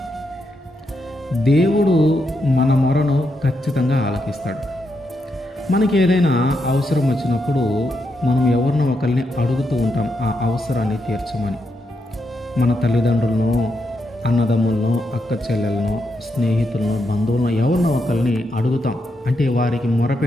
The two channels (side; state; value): both; normal; correlation 0.82